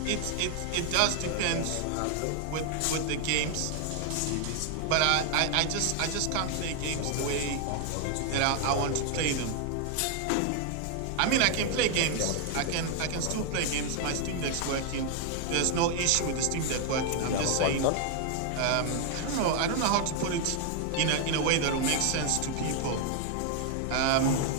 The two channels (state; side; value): different; both; correlation 0.00